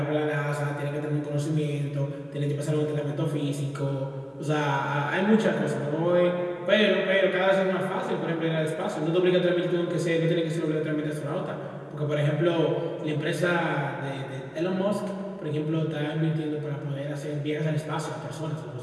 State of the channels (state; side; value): identical; both; correlation 1.00